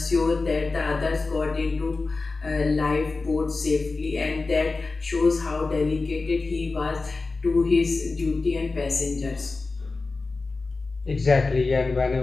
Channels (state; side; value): quieter; right; 3.7 dB